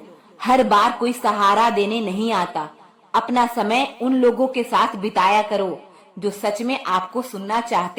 हर बार कोई सहारा देने नहीं आता। अपना समय उन लोगों के साथ बिताया करो जो सच में आपको सुनना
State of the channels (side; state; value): both; identical; correlation 1.00